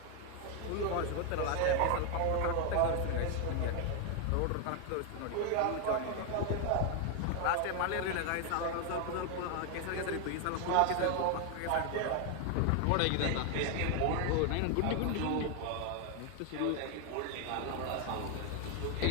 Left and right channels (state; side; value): different; both; correlation 0.01